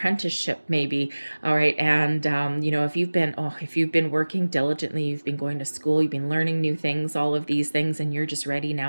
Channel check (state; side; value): inverted; both; correlation -1.00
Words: maybe, all right? And, you know, if you've been working diligently, you've been going to school, you've been learning new things, all of these things, and you're just ready